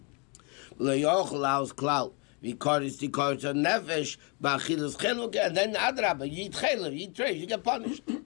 Le'yochel aus klal v'karis tikaris nefesh b'achilas cheluk, and then Adrabah you eat cheluk, you eat treif, you get punished.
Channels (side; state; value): right; quieter; 33.7 dB